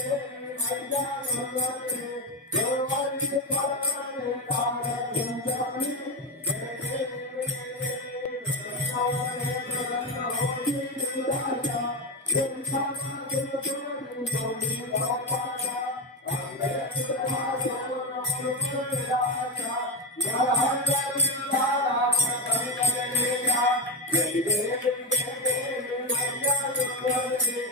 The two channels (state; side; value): normal; both; correlation 0.15